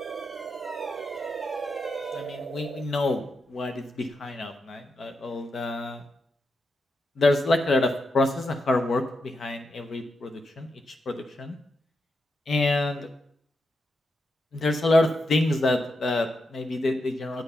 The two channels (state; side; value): normal; both; correlation 0.85